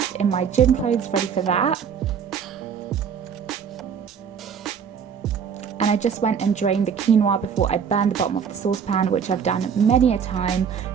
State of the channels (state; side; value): quieter; left; 7.2 dB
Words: in my gym clothes ready for that. And I just went and drained the quinoa before I burned the bottom of the saucepan, which I've done many a time.